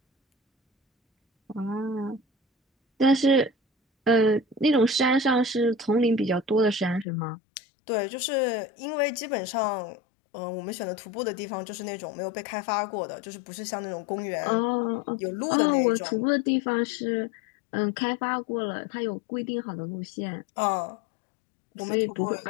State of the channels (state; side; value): drops out; right; at 7.1 s